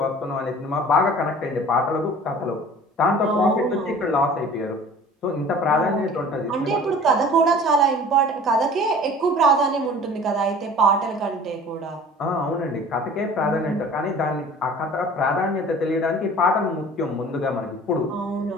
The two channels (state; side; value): normal; both; correlation 0.45